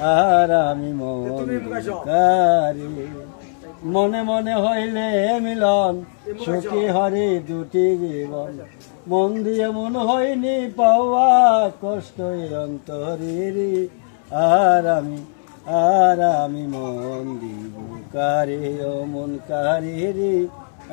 আর আমি মন কারি। মনে মনে হইলে মিলন, সুখী হরি দুটি জীবন। মন দিয়ে মন হয়নি পাওয়া, কষ্ট অন্তরে। আর আমি মন দিব কারে, ও মন কারে রে,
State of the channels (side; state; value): right; silent; 66 dB below the other